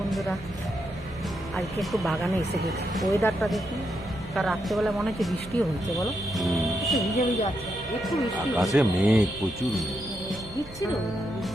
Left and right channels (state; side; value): noise; right; hum, 18 dB below the sound